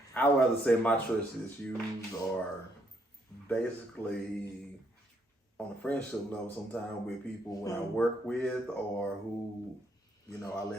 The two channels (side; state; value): both; normal; correlation 0.72